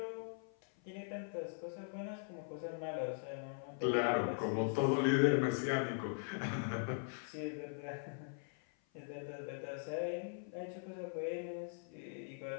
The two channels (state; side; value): silent; right; 51 dB below the other